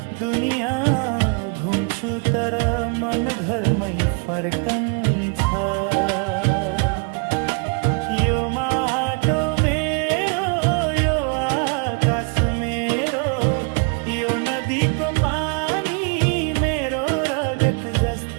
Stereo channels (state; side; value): quieter; left; 35.9 dB